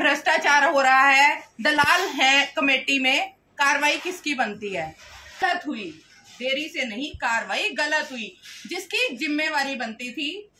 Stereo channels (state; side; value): identical; both; correlation 1.00